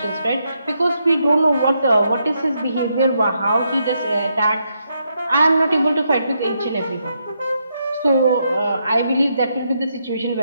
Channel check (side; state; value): both; inverted; correlation -0.80